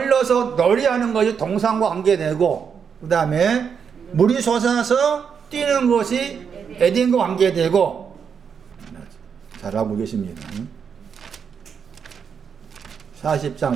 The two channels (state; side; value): quieter; left; 6.8 dB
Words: 노래하는 것이 동산과 관계되고 그 다음에 물이 솟아서 뛰는 것이 에덴과 관계되고 잘하고 계십니다.